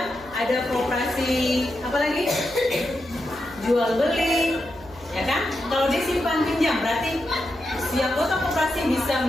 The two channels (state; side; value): noise; right; hum, 22 dB below the sound